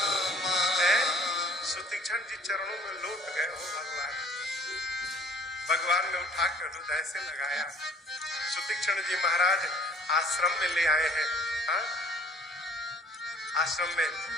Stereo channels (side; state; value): both; normal; correlation 0.53